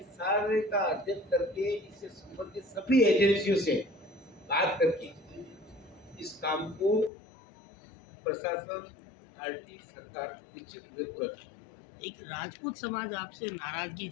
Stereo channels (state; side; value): drops out; right; at 7.1 s